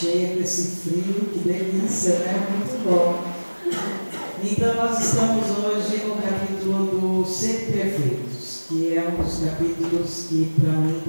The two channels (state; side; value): inverted; both; correlation -1.00